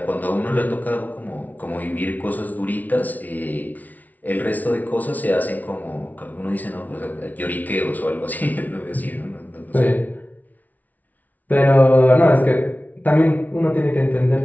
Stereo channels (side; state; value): right; late; 0.076 ms